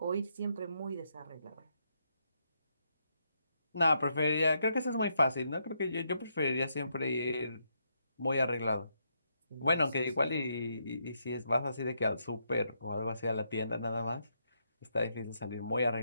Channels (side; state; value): both; inverted; correlation -0.78